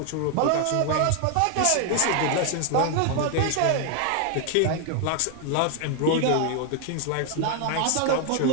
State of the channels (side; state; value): both; different; correlation 0.00